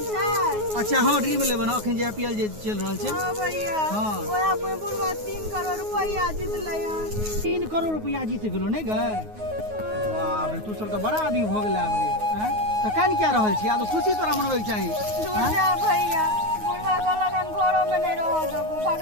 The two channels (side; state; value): left; late; 9.4 ms